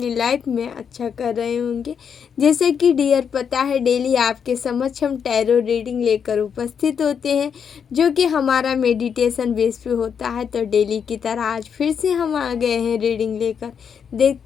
लाइफ में अच्छा कर रहे होंगे। जैसे कि डियर पता है, डेली आपके समक्ष हम टैरो रीडिंग लेकर उपस्थित होते हैं, जो कि हमारा मेडिटेशन बेस पे होता है। तो डेली की तरह आज फिर से हम आ गए हैं रीडिंग लेकर।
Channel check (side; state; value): right; quieter; 7.2 dB